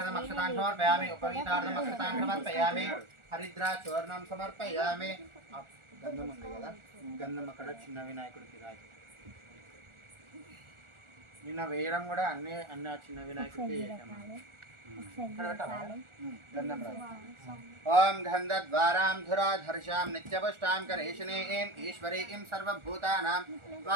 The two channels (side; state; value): left; late; 1.4 ms